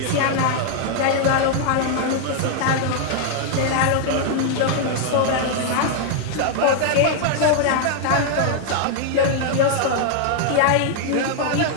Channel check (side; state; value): both; different; correlation 0.00